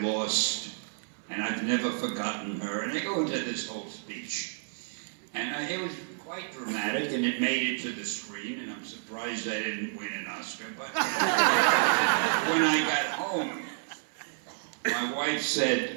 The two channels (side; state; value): left; silent; 58 dB below the other